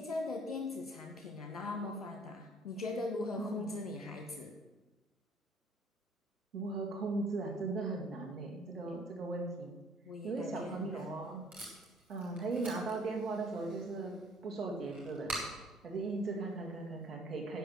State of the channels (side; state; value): both; normal; correlation 0.57